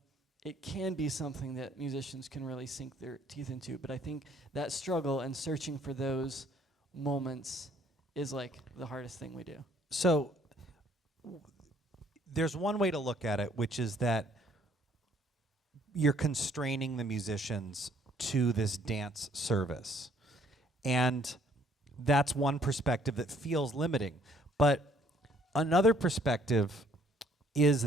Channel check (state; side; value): normal; both; correlation 0.63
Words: it can be something that musicians can really sink their teeth into, but I think that struggle and searching for those moments is like the hardest thing we do. So there's one way to look at it, which is that you're constraining the musicians to this dance service. And that's one perspective that feels limiting. But another perspective